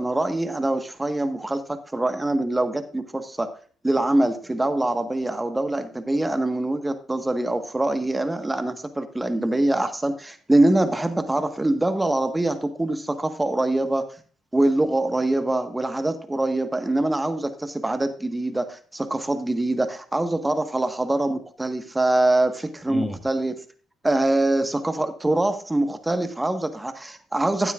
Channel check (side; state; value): both; normal; correlation 0.97